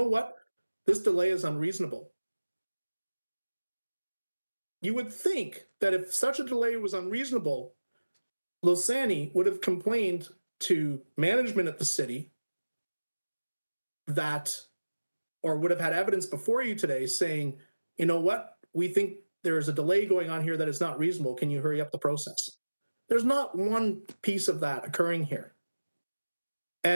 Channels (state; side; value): inverted; both; correlation -1.00